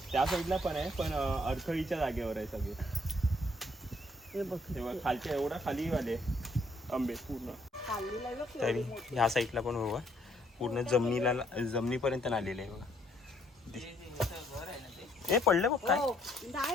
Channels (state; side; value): normal; both; correlation 0.67